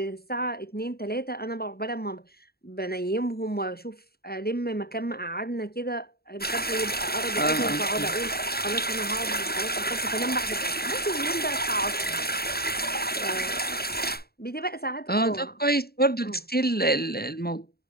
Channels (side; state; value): right; late; 0.45 ms